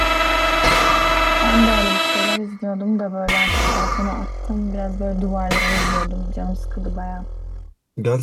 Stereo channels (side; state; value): both; identical; correlation 1.00